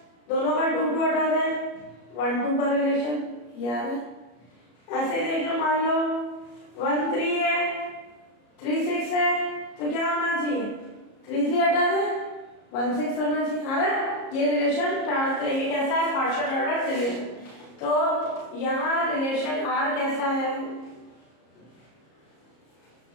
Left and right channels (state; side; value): late; right; 34 ms